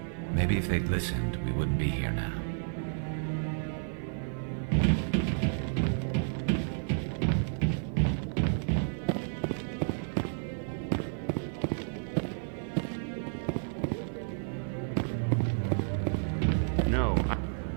Maybe if they'd listened, we wouldn't be here now.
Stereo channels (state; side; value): silent; left; 57 dB below the other